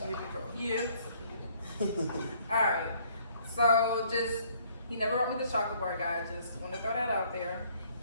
bar. Yeah. Alright, So just, he never wrote me the chocolate bar, guys. Just want to throw that out there.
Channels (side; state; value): both; inverted; correlation -0.62